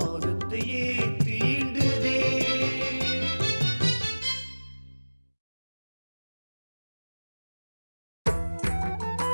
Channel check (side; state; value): both; inverted; correlation -1.00